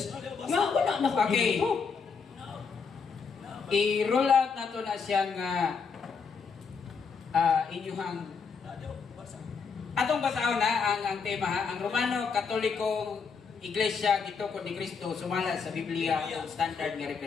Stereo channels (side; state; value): right; quieter; 5.5 dB